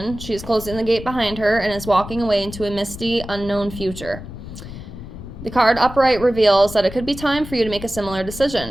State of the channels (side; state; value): left; noise; rumble, 12 dB below the sound